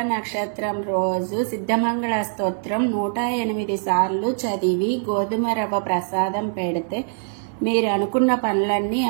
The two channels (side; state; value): left; silent; digital silence